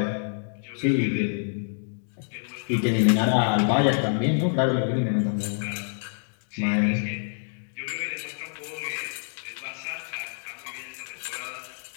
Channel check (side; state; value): right; silent; digital silence